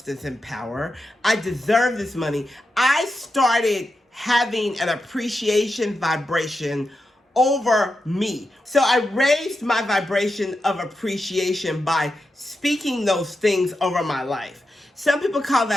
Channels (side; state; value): both; normal; correlation 0.88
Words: and power. I deserve this money. I started having an appreciation vibration over me. So I raised my vibration of appreciation by speaking those things over my life. Some people call